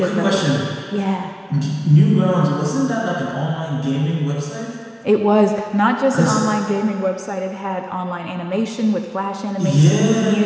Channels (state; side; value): identical; both; correlation 1.00